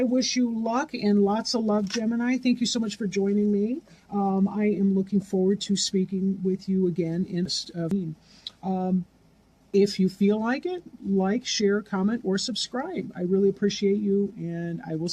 wish you luck and lots of love, Gemini. Thank you so much for joining me. I am looking forward to speaking with you again in if you feel like it, like, share, comment, or subscribe. I really appreciate you, and I will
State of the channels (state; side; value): identical; both; correlation 1.00